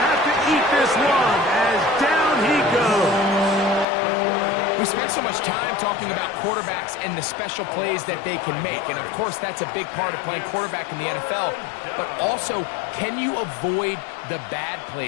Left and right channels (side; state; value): right; drops out; at 3.9 s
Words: have to eat this one as down he goes. We spent so much time talking about quarterbacks and the special plays that they can make, and of course that's a big part of playing quarterback in the NFL, but also, can you avoid the bad